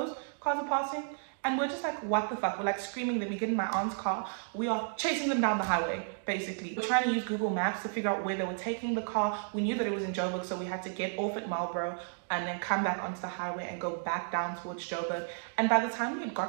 Cars are passing. And we're just like, what the fuck? We're like screaming. Then we get in my aunt's car. We are chasing them down the highway, basically. We're trying to use Google Maps to figure out where they were taking the car. We knew that it was in Joburg, so we had to get off at Marlborough and then come back onto the highway and go back down towards Joburg. And by the time we had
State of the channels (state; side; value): silent; left; digital silence